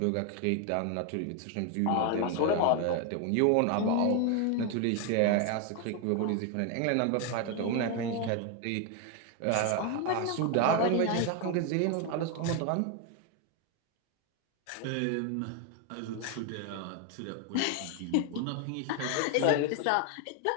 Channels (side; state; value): both; different; correlation 0.01